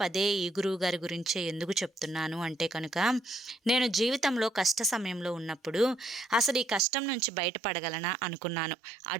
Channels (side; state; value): left; drops out; at 6.9 s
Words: పదే ఈ గురువుగారి గురించే ఎందుకు చెప్తున్నాను అంటే కనుక, నేను జీవితంలో కష్ట సమయంలో ఉన్నప్పుడు అసలు ఈ కష్టం నుంచి బయటపడగలనా అనుకున్నాను.